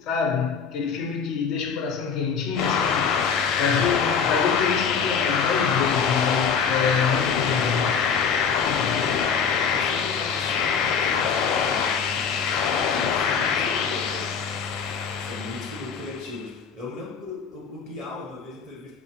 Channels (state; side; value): quieter; right; 6.2 dB